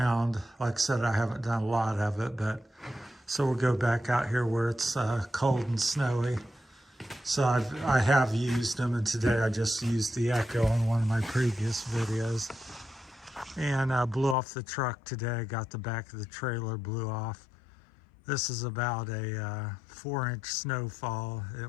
like I said, I haven't done a lot of it, but so we'll go back out here where it's cold and snowy. So I have used them, and today I just used the Echo on one of my previous videos. And blew off the truck today, got the back of the trailer blew off. This is about a 4-inch snowfall.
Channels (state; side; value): drops out; right; at 14.4 s